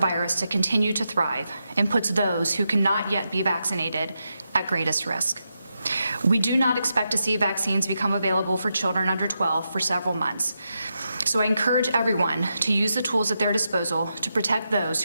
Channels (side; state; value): both; inverted; correlation -0.86